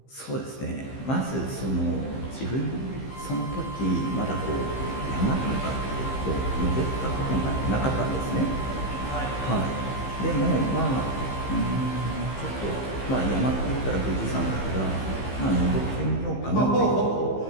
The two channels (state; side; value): late; right; 15 ms